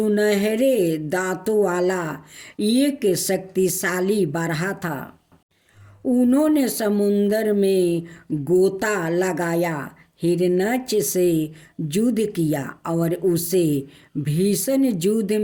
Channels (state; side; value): identical; both; correlation 1.00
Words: दांतों वाला एक शक्तिशाली बारहा था। उन्होंने समुद्र में गोता लगाया, हिरण्यक्ष से युद्ध किया और उसे भीषण युद्ध